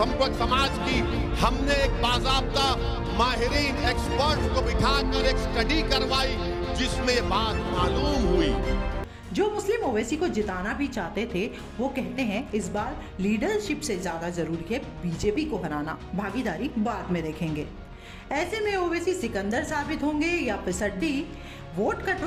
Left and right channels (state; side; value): identical; both; correlation 1.00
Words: समाज की हमने एक बाज़ाब्ता माहिरीन एक्सपर्ट को बिठाकर एक स्टडी करवाई जिसमें ये बात मालूम हुई। जो मुस्लिम ओवैसी को जिताना भी चाहते थे वो कहते हैं इस बार लीडरशिप से ज्यादा जरूरी है बीजेपी को हराना, भागीदारी बाद में देखेंगे। ऐसे में ओवैसी सिकंदर साबित होंगे या फिसड्डी, वोट